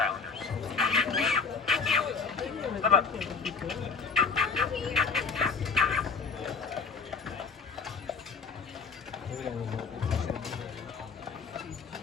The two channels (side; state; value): right; quieter; 5.1 dB